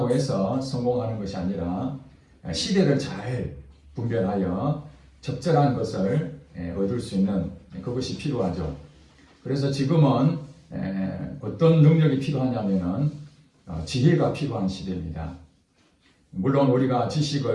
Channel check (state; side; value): identical; both; correlation 1.00